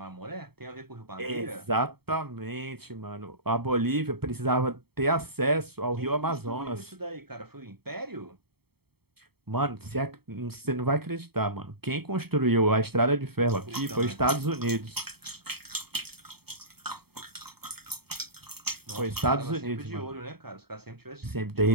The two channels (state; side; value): late; left; 0.96 ms